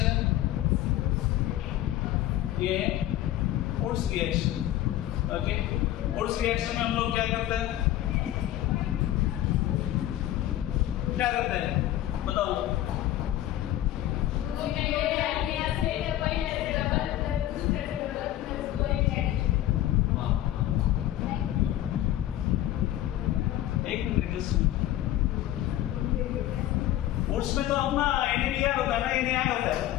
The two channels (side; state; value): right; quieter; 13.6 dB